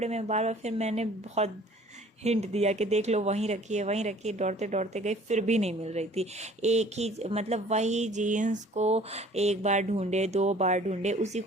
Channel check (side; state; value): both; normal; correlation 0.52